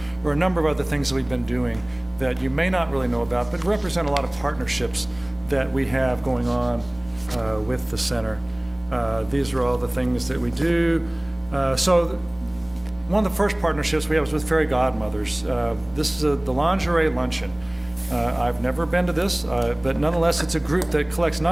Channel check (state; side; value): noise; right; hum, 24 dB below the sound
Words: are a number of other things that we've been doing that you may not really know about, but represent a lot of partnerships that we have going on with the center. These are all the things that we do. So one of the first partnerships we have is with Fairy Godmothers. This is the lingerie luncheon. I've never been to this, but nonetheless, it's a group that collects